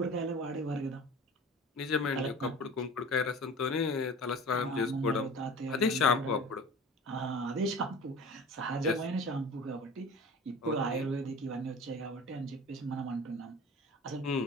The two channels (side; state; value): both; normal; correlation 0.39